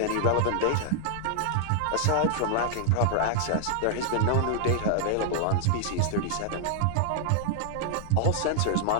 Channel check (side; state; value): both; different; correlation -0.01